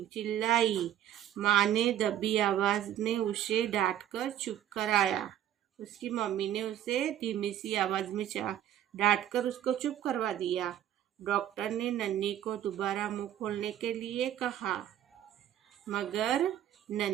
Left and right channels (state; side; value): quieter; left; 11.3 dB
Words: चिल्लाई। माँ ने दबी आवाज में उसे डांटकर चुप कराया। उसकी मम्मी ने उसे धीमी सी आवाज में डांटकर उसको चुप करवा दिया। डॉक्टर ने नन्ही को दोबारा मुंह खोलने के लिए कहा, मगर